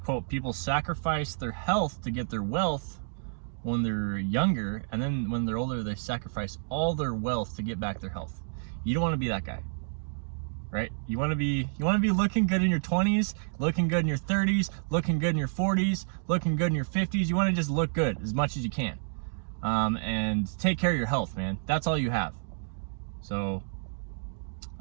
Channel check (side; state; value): left; silent; digital silence